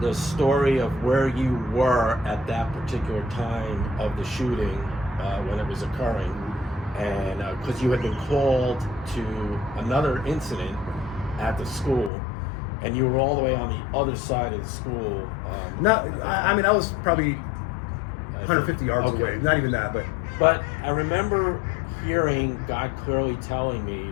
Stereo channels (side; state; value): right; drops out; at 12.1 s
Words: the story of where you were at that particular time of the shooting when it was occurring, and because you had been called to another incident at the school, and you were all the way on the other side of the school. I mean, I was probably 150 yards Okay. away. Not even that, But I remember hearing God clearly telling me